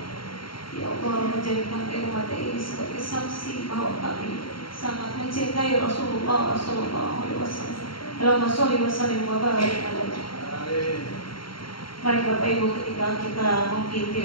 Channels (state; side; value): late; right; 0.73 ms